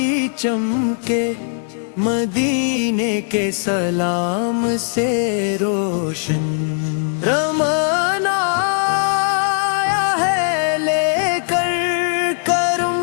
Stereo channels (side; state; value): right; silent; digital silence